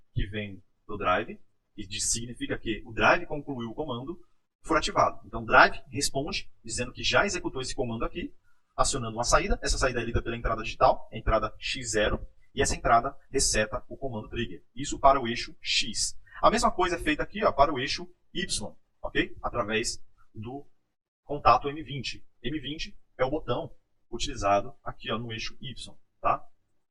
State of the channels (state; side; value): identical; both; correlation 1.00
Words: que vem do drive, e significa que o drive concluiu o comando, for ativado. Então o drive responde dizendo que já executou esse comando aqui, acionando uma saída. Essa saída é lida pela entrada digital, a entrada X0, E essa entrada reseta o comando trigger. Isso para o eixo X. A mesma coisa é feita aqui, ó, para o eixo Y, ok? Através do contato M20. M20 é o botão utilizado aqui, ó, no eixo Y, tá?